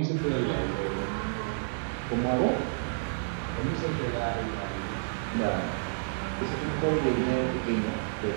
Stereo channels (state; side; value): silent; left; digital silence